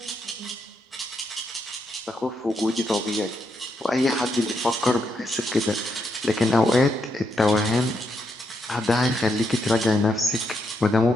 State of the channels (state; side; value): normal; both; correlation 0.80